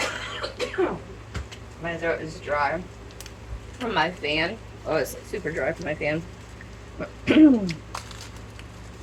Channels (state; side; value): identical; both; correlation 1.00